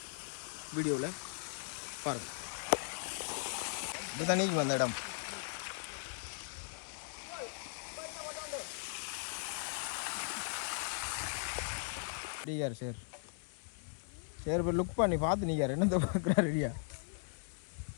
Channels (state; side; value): silent; right; 52 dB below the other